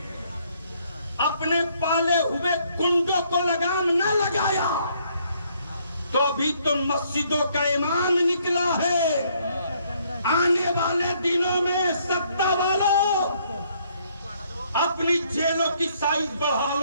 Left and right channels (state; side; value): inverted; both; correlation -0.67